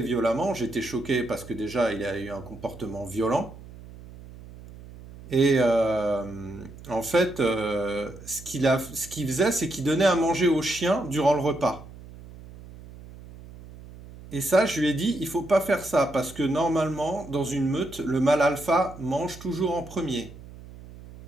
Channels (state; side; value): noise; right; hum, 17 dB below the sound